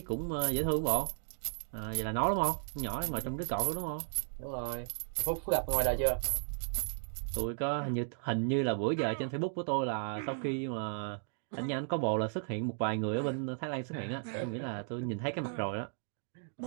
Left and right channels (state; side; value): silent; left; digital silence